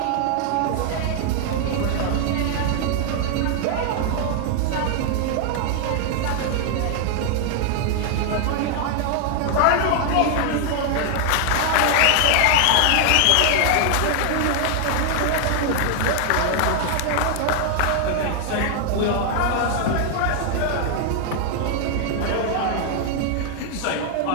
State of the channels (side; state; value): both; different; correlation 0.00